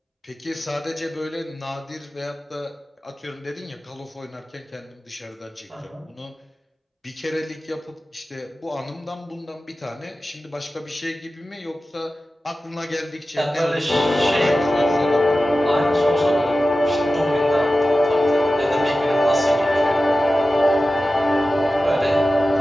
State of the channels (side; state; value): both; normal; correlation 0.95